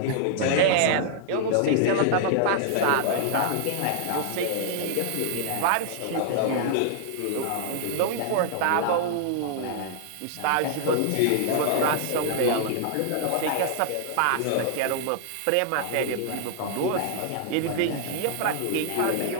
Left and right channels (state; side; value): different; both; correlation -0.01